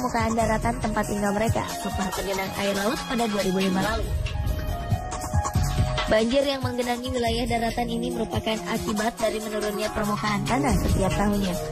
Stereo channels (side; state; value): both; identical; correlation 1.00